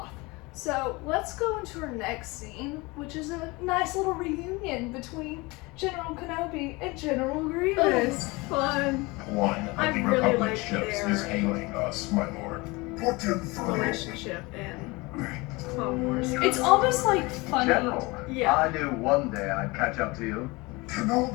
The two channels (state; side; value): quieter; right; 24.2 dB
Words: So let's go into our next scene, which is a nice little reunion between General Kenobi and General Grievous. Fun. One I of the really Republic like ships their is hailing us, my lord. Put him through. Relationship in Clone Wars. It's almost funny. General, Yeah. I knew one day I'd catch up to you.